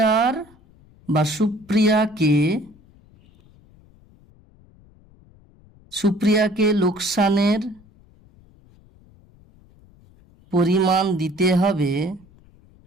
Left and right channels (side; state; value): left; noise; rumble, 28 dB below the sound